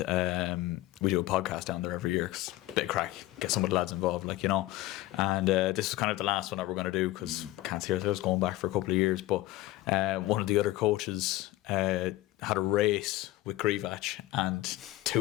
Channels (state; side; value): quieter; right; 17.0 dB